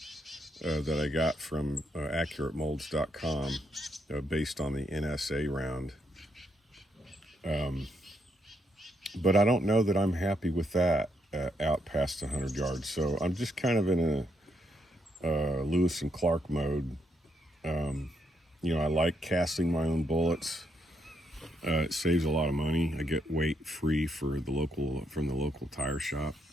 that I got from AccurateMolds.com based on the NSA round. But I don't know that I'm happy with that out past 100 yards. So I'm just kind of in a Lewis and Clark mode. I like casting my own bullets. It saves a lot of money. I get weight free from the local tire shop.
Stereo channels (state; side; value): normal; both; correlation 0.76